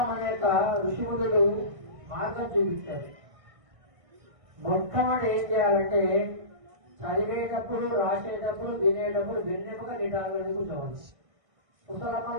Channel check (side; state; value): left; late; 1.6 ms